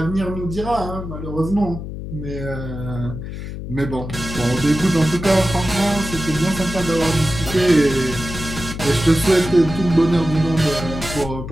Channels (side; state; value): left; noise; hum, 8 dB below the sound